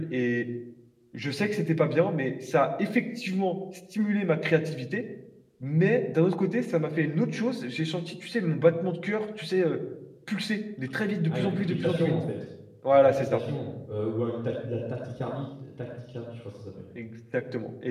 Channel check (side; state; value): both; identical; correlation 1.00